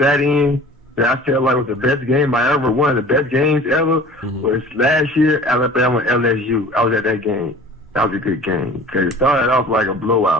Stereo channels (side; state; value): both; normal; correlation 0.44